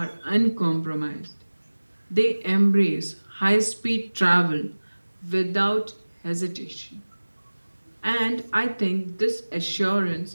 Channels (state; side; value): inverted; both; correlation -1.00